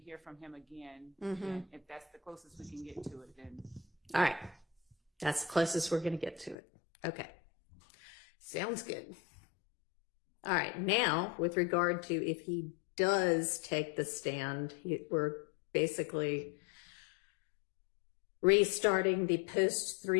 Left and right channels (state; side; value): drops out; right; at 6.6 s